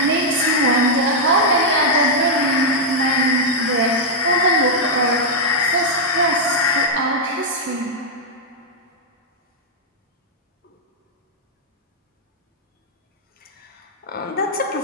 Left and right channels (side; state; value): both; normal; correlation -0.04